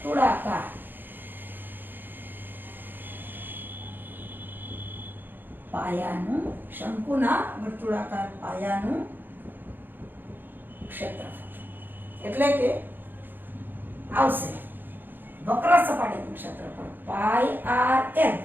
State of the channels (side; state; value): left; late; 0.093 ms